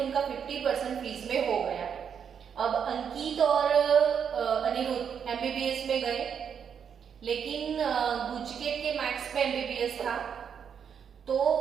50% फीस में हो गया। अब अंकित और अनिरुद्ध एमबीबीएस में गए, लेकिन गुजकेट के मैथ्स पे एमबीबीएस था तो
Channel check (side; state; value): left; quieter; 7.5 dB